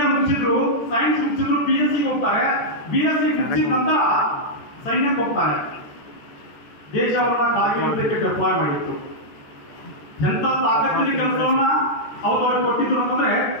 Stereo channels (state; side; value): late; right; 14 ms